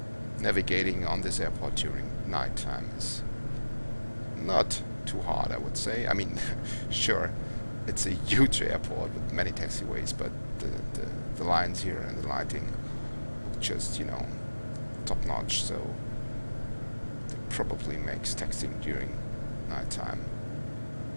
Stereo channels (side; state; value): both; inverted; correlation -1.00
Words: Navigating on this airport during nighttime is not too hard, I would say. I mean, sure, it's a huge airport with many taxiways, but the lines here and the lighting look just, top notch, so it probably makes taxiing during nighttime